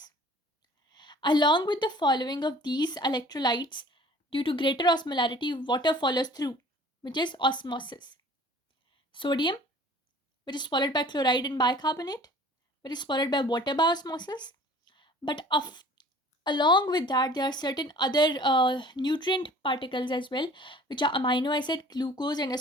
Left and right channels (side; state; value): both; normal; correlation 0.49